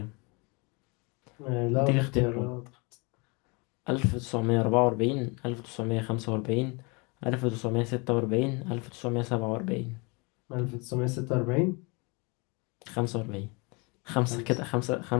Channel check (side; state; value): right; quieter; 29.7 dB